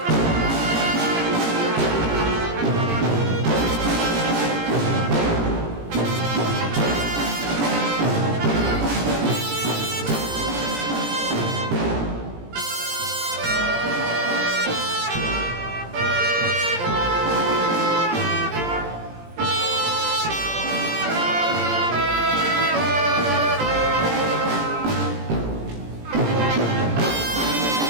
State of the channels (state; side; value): late; left; 18 ms